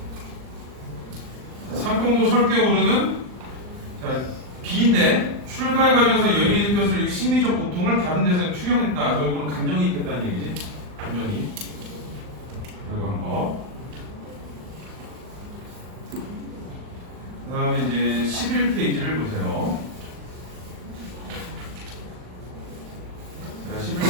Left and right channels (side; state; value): left; late; 39 ms